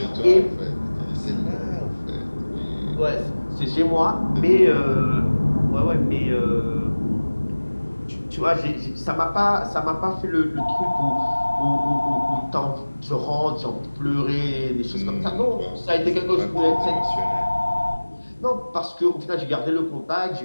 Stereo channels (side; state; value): both; inverted; correlation -1.00